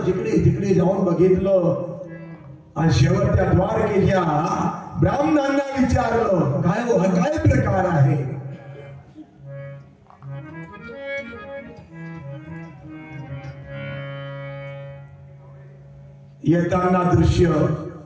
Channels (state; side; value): identical; both; correlation 1.00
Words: जिकडे तिकडे जाऊन बघितलं आणि शेवटच्या द्वारकेच्या ब्राह्मणांना विचारलं, काय हो हा काय प्रकार आहे. येताना दृश्य